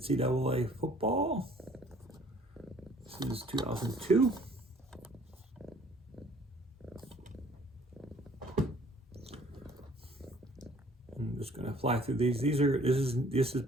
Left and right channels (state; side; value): normal; both; correlation 0.56